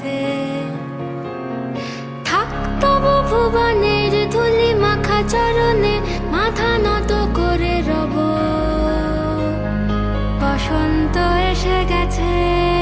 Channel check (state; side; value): identical; both; correlation 1.00